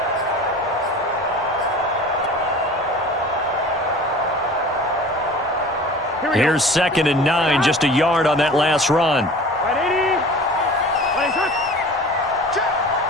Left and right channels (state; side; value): normal; both; correlation 0.41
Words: Here's 2nd and 9, just a yard on that last run.